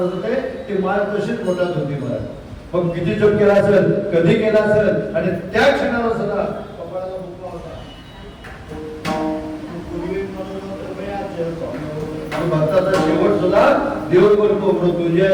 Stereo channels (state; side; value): identical; both; correlation 1.00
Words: होते. ती माळ तशीच पोटात होती. मला मग किती जप केला असेल, कधी केला असेल, आणि त्या क्षणाला सुद्धा कपाळाला मुक्का होता. भक्ताचा शेवट सुद्धा देव करतो.